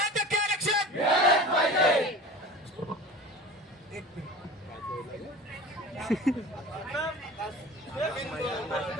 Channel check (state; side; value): normal; both; correlation 0.37